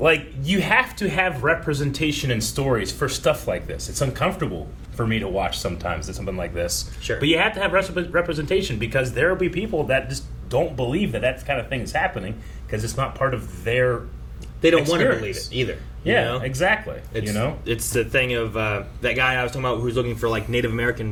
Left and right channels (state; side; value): identical; both; correlation 1.00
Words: you have to have representation in stories for stuff like this. It's uncomfortable for me to watch sometimes something like this. Sure. But you have to have representation, because there will be people that just don't believe that kind of thing is happening because it's not part of their They don't want to experience. believe it either. Yeah, you know? exactly. It's, you know, it's the thing of that guy I was talking about who's looking for like Native